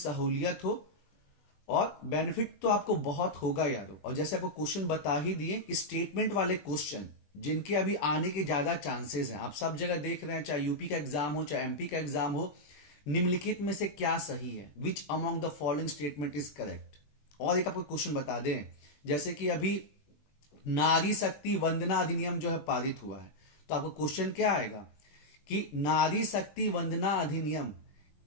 हो, और बेनिफिट तो आपको बहुत होगा यारो। और जैसे आपको क्वेश्चन बता ही दिए कि स्टेटमेंट वाले क्वेश्चन जिनके अभी आने के ज्यादा चांसेस हैं, आप सब जगह देख रहे हैं, चाहे यूपी का एग्जाम हो चाहे एमपी का एग्जाम हो, निम्नलिखित में से क्या सही है, which among the following statement is correct. और एक आपको क्वेश्चन बता दें, जैसे कि अभी नारी शक्ति वंदना अधिनियम जो है पारित हुआ है, तो आपको क्वेश्चन क्या आएगा कि नारी शक्ति वंदना अधिनियम,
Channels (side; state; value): right; late; 20 ms